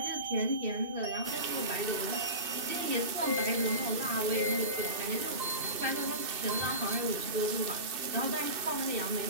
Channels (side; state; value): left; late; 2.6 ms